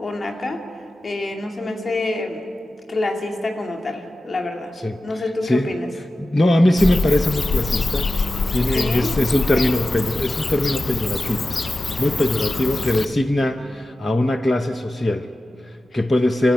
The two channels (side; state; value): both; normal; correlation 0.94